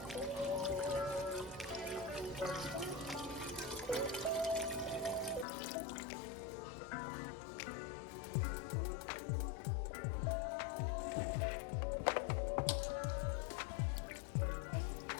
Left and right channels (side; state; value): right; drops out; at 5.5 s